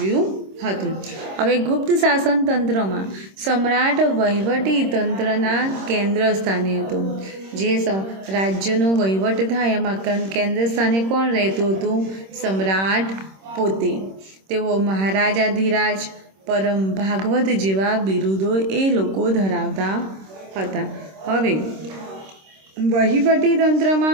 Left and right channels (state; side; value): late; left; 26 ms